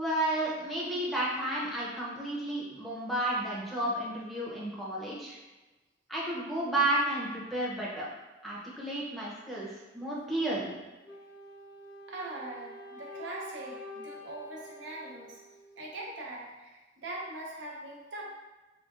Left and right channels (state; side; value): normal; both; correlation 0.22